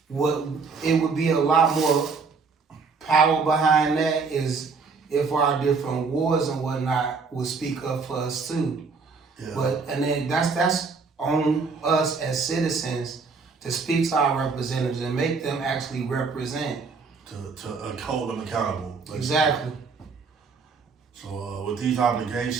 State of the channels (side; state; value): left; quieter; 4.8 dB